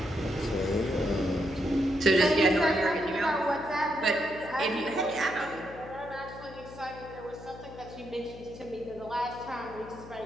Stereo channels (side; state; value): left; noise; hum, 15 dB below the sound